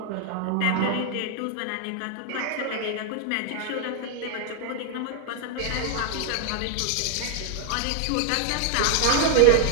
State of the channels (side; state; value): both; different; correlation 0.00